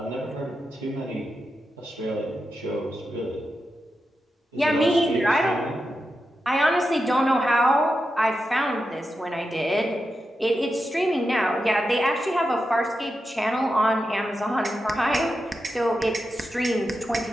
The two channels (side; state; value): both; normal; correlation 0.89